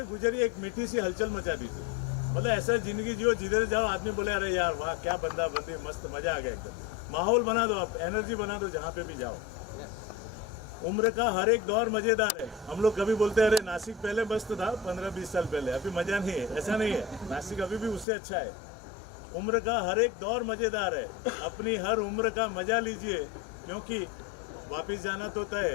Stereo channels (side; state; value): right; drops out; at 18.1 s